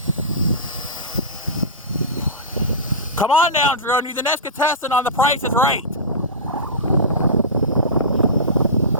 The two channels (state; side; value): normal; both; correlation -0.19